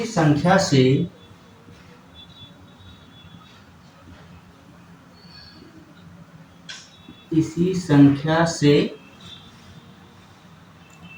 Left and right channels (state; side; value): identical; both; correlation 1.00